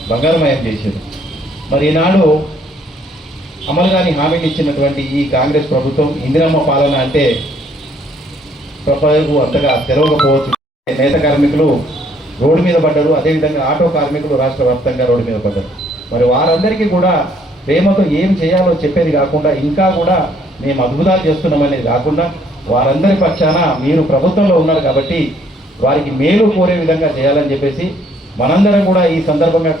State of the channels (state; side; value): normal; both; correlation 0.65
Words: బంగారమయం చేశారు. మరి ఈనాడు అమలు కాని హామీలు ఇచ్చినటువంటి ఈ కాంగ్రెస్ ప్రభుత్వం ఇందిరమ్మ పాలన అంటే ప్రజలకు అంతగా తెలవకపోవచ్చు. నేత కార్మికులు రోడ్డు మీద పడ్డారు, అదేవిధంగా ఆటో కార్మికులు రాష్ట్ర వ్యాప్తంగా రోడ్డు మీద పడ్డారు. మరి వారందరికీ కూడా ప్రేమతో ఏం చేయాలో చెప్పేది కాకుండా, ఇంకా కూడా మేము అద్భుతాలు చేస్తున్నామనేది కాకుండా, వారందరి పక్షాన మీరు ప్రభుత్వంలో ఉన్నారు కాబట్టి వారికి మేలు కోరే విధంగా చేయాలని చెప్పేసి మనందరం కూడా ఈ సందర్భంగా